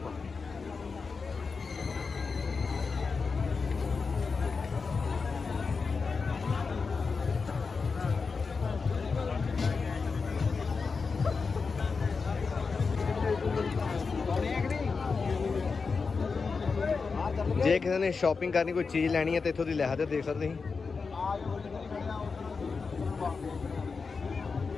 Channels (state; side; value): quieter; right; 4.8 dB